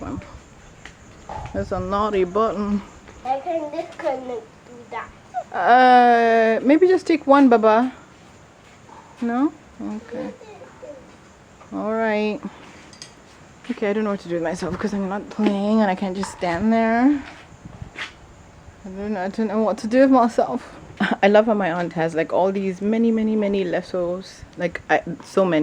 It's a naughty button. I can disconnect do that. Maybe just take one, Baba. No? Okay. Alright. Okay, I don't know what to do with myself because I'm not playing and I can't just stand there. I don't know what to do with myself. I love how my aunt has like all these many lassos, like so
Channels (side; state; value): both; identical; correlation 1.00